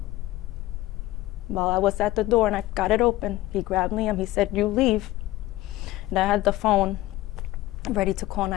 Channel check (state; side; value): quieter; right; 17.0 dB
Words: While I was at the door and I got it open, he grabbed Liam. He said, "You leave." And I had the phone ready to call